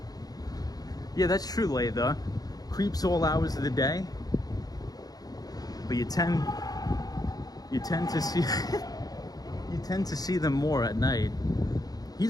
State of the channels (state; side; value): late; right; 0.18 ms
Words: Yeah, that's true, Laytha. Creeps all hours of the day. But you tend to see you tend to see them more at night.